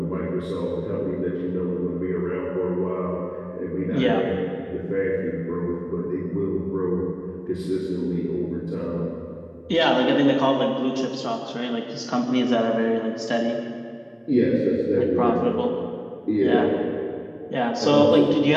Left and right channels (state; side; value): identical; both; correlation 1.00